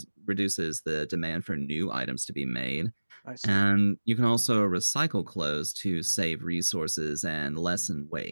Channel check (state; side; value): inverted; both; correlation -1.00